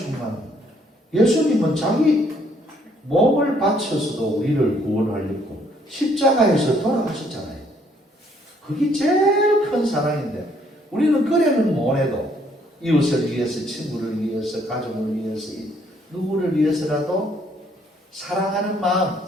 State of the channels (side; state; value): both; normal; correlation 0.66